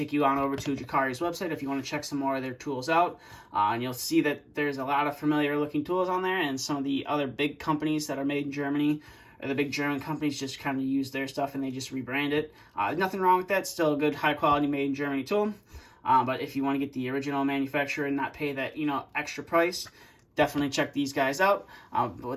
you on over to Jakari's website if you want to check some more of their tools out. And you'll see that there's a lot of familiar looking tools on there, and some of the other big companies that are made in Germany, or the big German companies, just kind of use their stuff and they just rebrand it. Nothing wrong with that. Still a good, high quality, made in Germany tool. But if you want to get the original manufacturer and not pay that, extra price, definitely check these guys out. But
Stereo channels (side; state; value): both; identical; correlation 1.00